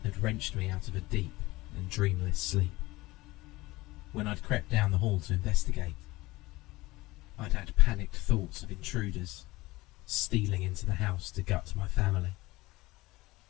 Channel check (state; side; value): quieter; right; 20.1 dB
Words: had wrenched me out of a deep and dreamless sleep. When I'd crept down the hall to investigate, I'd had panicked thoughts of intruders stealing into the house to gut my family.